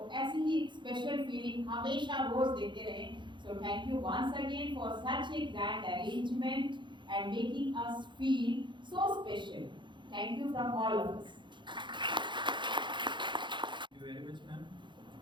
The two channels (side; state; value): left; late; 0.23 ms